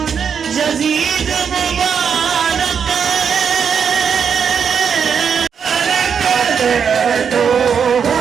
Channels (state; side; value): quieter; left; 6.9 dB